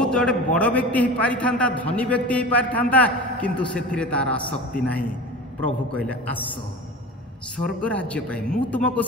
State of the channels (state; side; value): normal; both; correlation 0.33